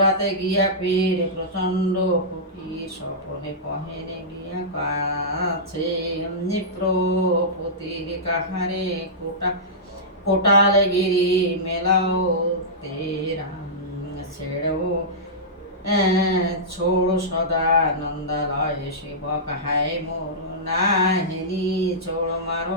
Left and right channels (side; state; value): both; normal; correlation -0.14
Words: গিয়া পীর প্রচন্ড ফকির স্বপনে কহেনে গিয়া কাছে প্রপতির কাহারে কোটালে গিরি মেলাও তেরাম ছেড়ো ছোড় সদা নন্দালয় শিবক হায় মোর নাহিনী ছোড়